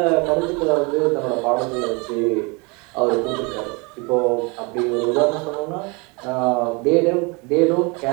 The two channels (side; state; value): left; quieter; 29.5 dB